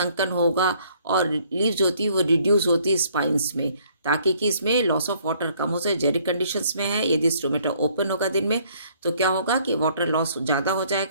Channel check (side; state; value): both; inverted; correlation -0.63